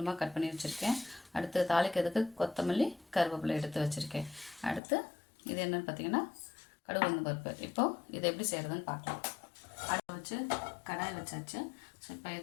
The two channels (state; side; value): drops out; right; at 4.8 s